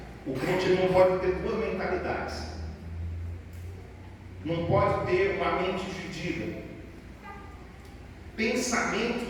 o crente não pode ter duas mentalidades. Não pode ter uma mente dividida.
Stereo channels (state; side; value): identical; both; correlation 1.00